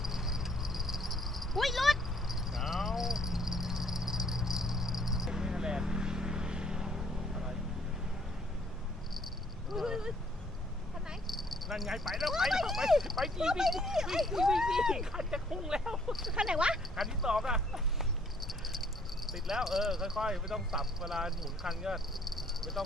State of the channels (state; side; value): normal; both; correlation 0.63